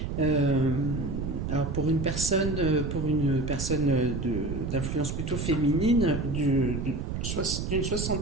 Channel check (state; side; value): noise; right; rumble, 3 dB below the sound